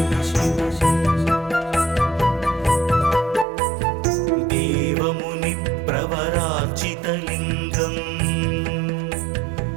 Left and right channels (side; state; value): left; drops out; at 3.5 s